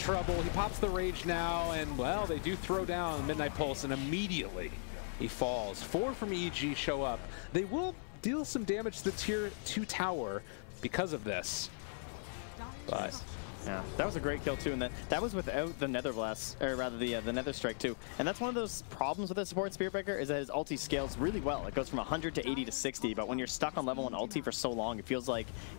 He pops the rage now, and, well, they do throw down Midnight Pulse, and immediately he falls. 4 from EG show up. They will deal some damage to the tier 2 tower because of this. But yeah, that was a great kill too, and that was without the Nether Blast, or rather the Nether Strike too. And that's one of those problems with the support Spirit Breaker, is that his ulti scales really well. It goes from 100 to 80 to 60, but when you're stuck on level 1 ulti for so long, it feels like,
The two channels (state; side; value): silent; right; 52 dB below the other